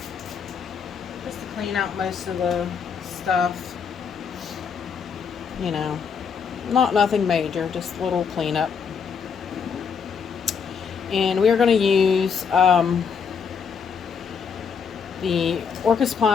just to clean out most of the stuff. You know, nothing major, just a little cleanup. And we are going to use the Orchid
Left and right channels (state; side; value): quieter; right; 6.4 dB